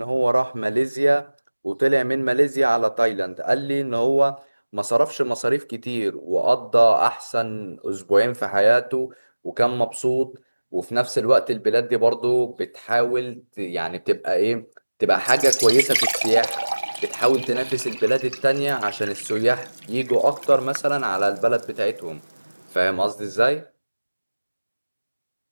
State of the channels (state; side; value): inverted; both; correlation -1.00